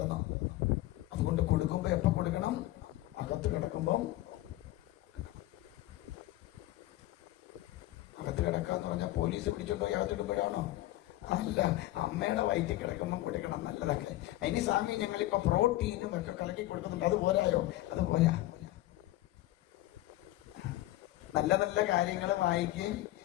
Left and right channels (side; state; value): right; quieter; 16.4 dB